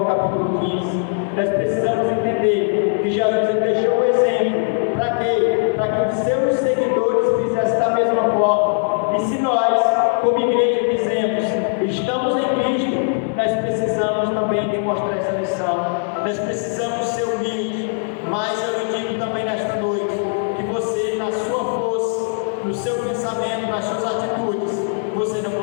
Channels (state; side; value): silent; right; 66 dB below the other